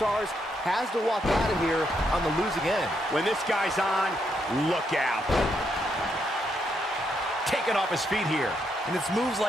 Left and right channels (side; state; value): both; normal; correlation 0.78